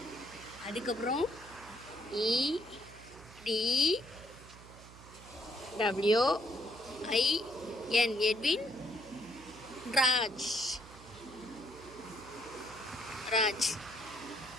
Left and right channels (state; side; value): noise; right; hum, 19 dB below the sound